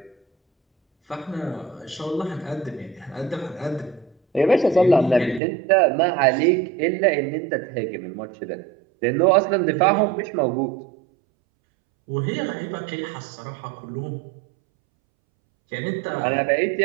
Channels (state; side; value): drops out; left; at 5.4 s